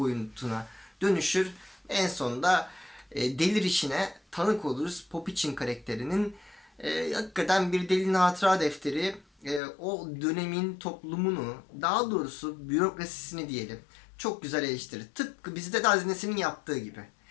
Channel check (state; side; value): drops out; right; at 9.6 s